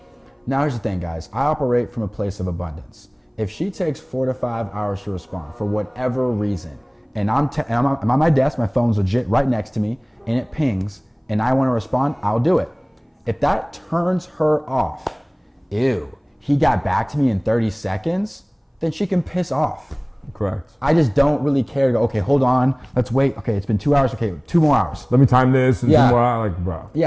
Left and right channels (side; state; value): both; identical; correlation 1.00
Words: Now, here's the thing, guys. I operate from a place of abundance. If she takes 4 to 5 hours to respond for whatever reason, and I'm on my desk, my phone's legit right next to me, and it pings, and I want to respond, I'll do it. If that turns her off, ew, he got back to me in 30 seconds, then she can piss off. Correct. I just don't really care to go, okay, hold on, let's wait. Okay, it's been 2 hours, okay, 2 more hours. Let me time this. Yeah. 2 more hours, like, bro.